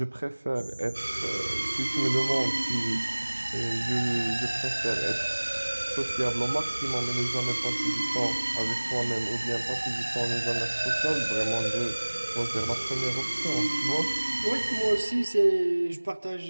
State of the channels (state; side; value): inverted; both; correlation -1.00